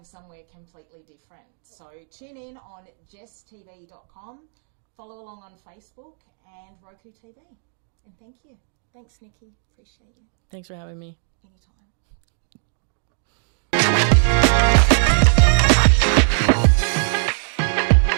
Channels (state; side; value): silent; left; digital silence